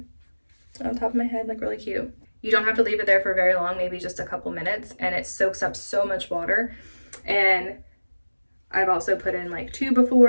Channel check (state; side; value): inverted; both; correlation -1.00